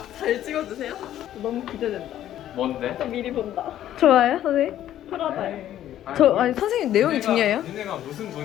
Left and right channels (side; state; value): right; quieter; 12.0 dB